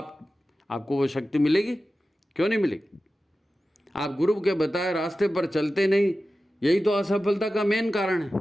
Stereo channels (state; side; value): normal; both; correlation 0.94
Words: वो शक्ति मिलेगी, क्यों नहीं मिलेगी? आप गुरु के बताए रास्ते पर चलते नहीं, यही तो असफलता का मेन कारण